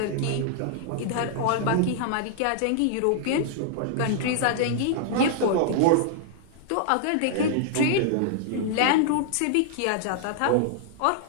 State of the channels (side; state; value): both; different; correlation -0.01